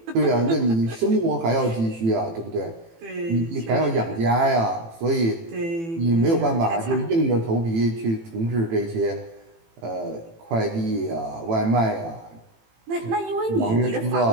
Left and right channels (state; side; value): late; left; 18 ms